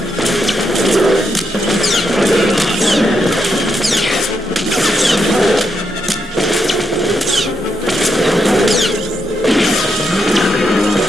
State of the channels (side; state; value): both; normal; correlation 0.81